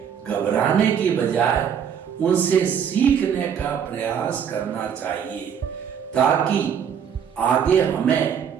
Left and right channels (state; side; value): quieter; left; 7.9 dB